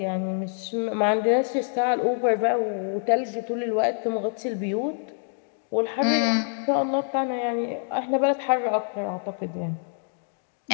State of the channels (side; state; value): right; silent; 61 dB below the other